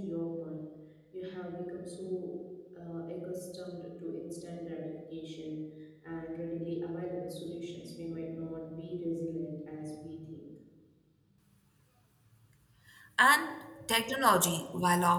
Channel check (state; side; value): identical; both; correlation 1.00